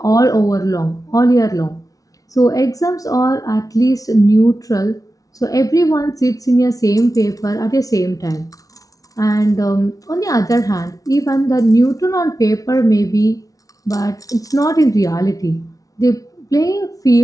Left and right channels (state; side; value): late; right; 0.18 ms